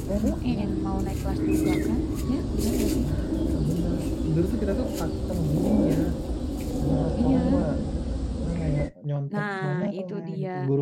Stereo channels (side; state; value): both; identical; correlation 1.00